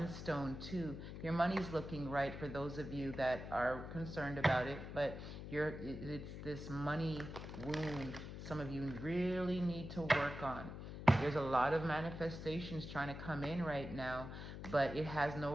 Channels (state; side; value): noise; left; hum, 9 dB below the sound